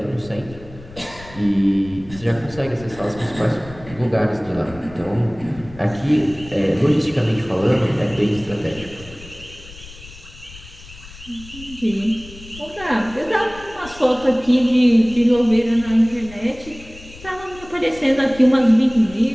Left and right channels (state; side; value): noise; left; rumble, 18 dB below the sound